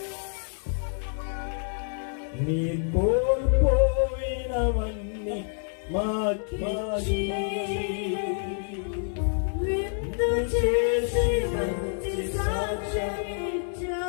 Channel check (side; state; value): right; silent; 60 dB below the other